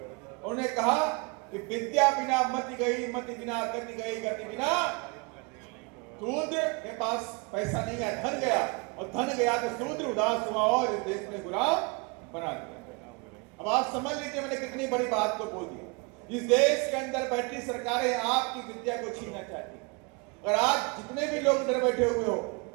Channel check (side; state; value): left; quieter; 30.2 dB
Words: कहा कि विद्या बिना मति गई, मति बिना गति गई, गति बिना शूद्र के पास पैसा नहीं है, धन गया, और धन गया तो शूद्र उदास हुआ और इस देश में गुलाम बना दिया। अब आप समझ लीजिए मैंने कितनी बड़ी बात को बोल दी। इस देश के अंदर बैठी सरकारें आपकी विद्या को छीनना चाहती। और आज जितने भी लोग इधर बैठे हुए हो